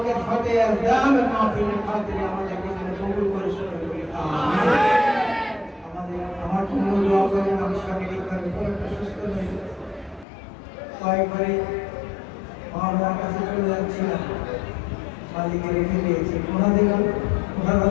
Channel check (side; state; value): right; drops out; at 10.2 s